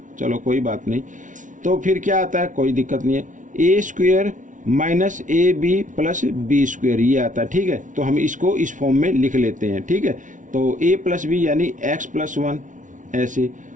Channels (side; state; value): left; late; 0.37 ms